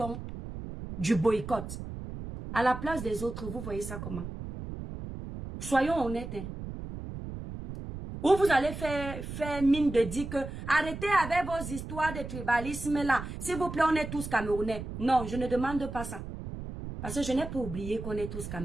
du boycott. À la place des autres, vous voyez ça comment? Soyons honnêtes. Hein? Ou vous allez faire mine de dire que arrêtez avec vos histoires de tribalisme là. S'il vous plaît, on est tous Camerounais. Non, je ne demande pas ça. Parce que je n'ai pas oublié qu'on est tous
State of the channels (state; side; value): noise; right; rumble, 9 dB below the sound